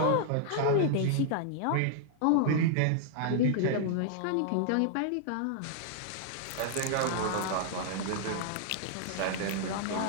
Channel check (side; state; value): both; different; correlation -0.01